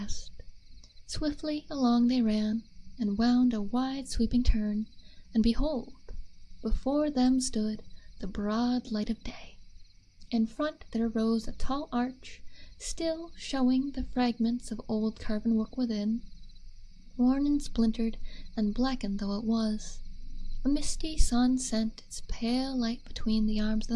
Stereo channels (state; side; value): identical; both; correlation 1.00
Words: Swiftly along they ran, and wound a wide sweeping turn, and behold, before them stood the broad light of day. In front there rose a tall arch, still showing the fragments of old carven work within, worn and splintered and blackened though it was. A misty sun sent its pale light between the arms of